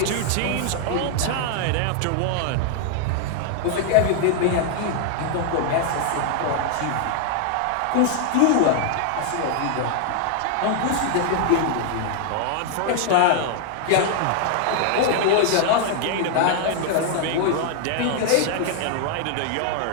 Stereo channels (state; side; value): different; both; correlation 0.00